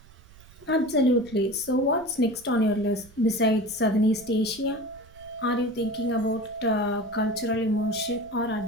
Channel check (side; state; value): right; noise; rumble, 23 dB below the sound